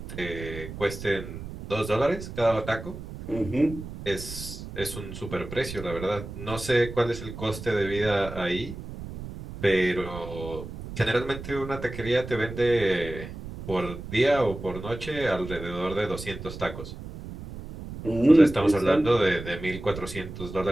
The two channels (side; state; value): right; noise; rumble, 11 dB below the sound